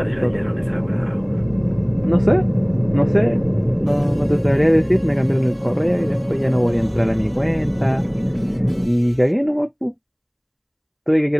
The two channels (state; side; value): identical; both; correlation 1.00